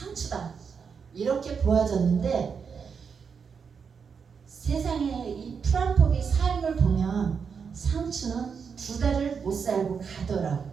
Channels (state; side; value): quieter; left; 6.2 dB